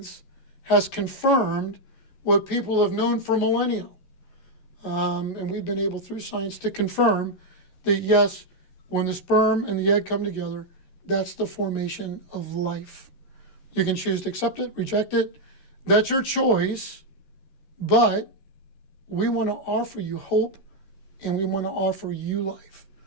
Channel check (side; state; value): right; late; 11 ms